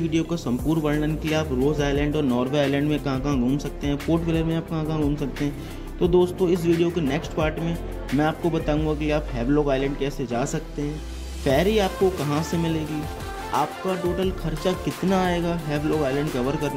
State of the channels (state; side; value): identical; both; correlation 1.00